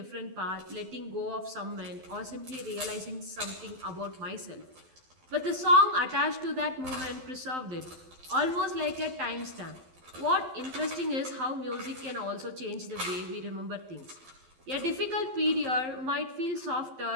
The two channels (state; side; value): late; left; 12 ms